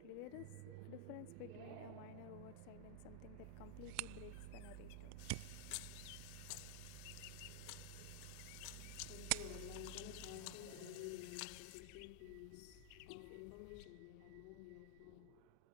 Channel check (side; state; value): both; different; correlation 0.00